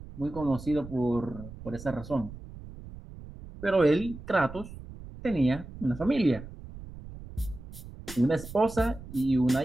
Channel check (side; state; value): right; noise; rumble, 14 dB below the sound